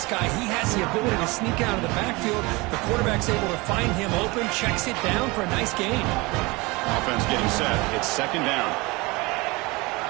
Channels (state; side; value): quieter; left; 24.4 dB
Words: guy. He has the ability to sneak out of the backfield. The quarterback's able to find him open, checks it down for a nice gain. Offense getting set. It's second down.